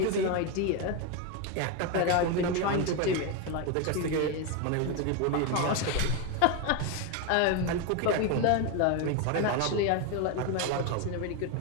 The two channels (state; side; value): different; both; correlation 0.02